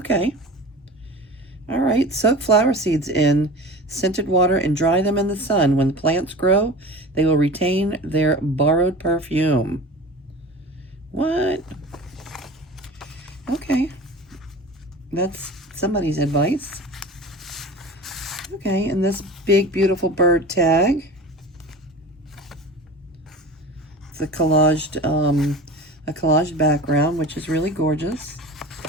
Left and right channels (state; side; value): normal; both; correlation 0.35